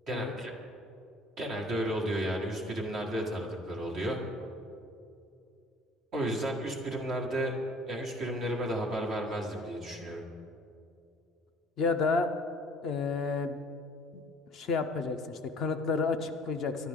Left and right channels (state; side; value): normal; both; correlation 0.53